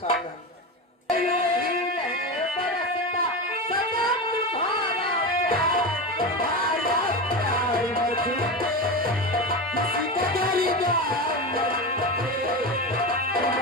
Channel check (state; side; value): normal; both; correlation 0.21